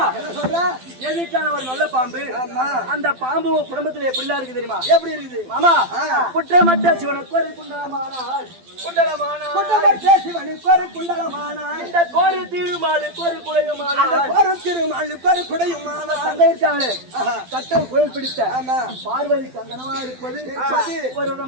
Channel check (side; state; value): left; late; 12 ms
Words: என்ன சொல்ற? எதுக்கான ஒரு நல்ல பாம்பு. ஆமா. அந்த பாம்பு குடும்பத்துல எப்படிலாம் இருக்கு தெரியுமா? எப்படி இருக்குது மாமா குற்றமற்ற சிவனுக்கு ஒரு குண்டலமானாள் குண்டமற்ற சிவனுக்கு ஒரு குண்டலமானாள். இந்த கோரு திருமாலுக்கு ஒரு குடையுமானாள். அந்த ஒரு திருமாலுக்கு ஒரு குடையுமானாள். அங்க இருக்காங்களே கட்டம் கோயில் பிடித்த ஆமா. பார்வதி கங்கனமா இருப்பது ஒரு